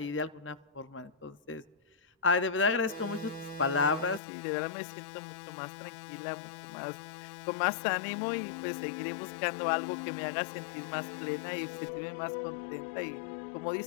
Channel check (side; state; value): right; drops out; at 4.2 s